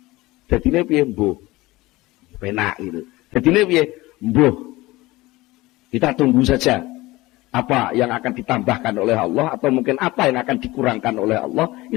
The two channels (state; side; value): quieter; right; 19.8 dB